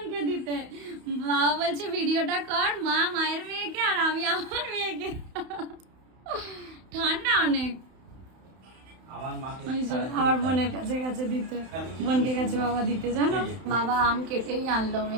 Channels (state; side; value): late; left; 31 ms